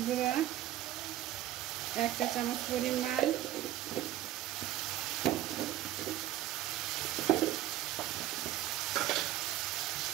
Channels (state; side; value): quieter; left; 13.5 dB